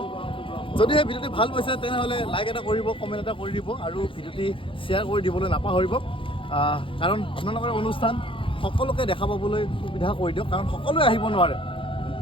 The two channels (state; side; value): late; right; 0.25 ms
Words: যদিহে ভিডিঅ'টি ভাল পাইছে তেনেহ'লে লাইক এটা কৰিব কমেণ্ট এটা কৰি দিব আৰু ভিডিঅ'টি শ্বেয়াৰ কৰি দিবলৈ নাপাহৰিব কাৰণ আপোনালোকৰ অনুষ্ঠান সকলোকে দেখা পাবলৈ সুবিধা কৰি দিয়ক কাৰণ সকলোৱে আহিব নোৱাৰে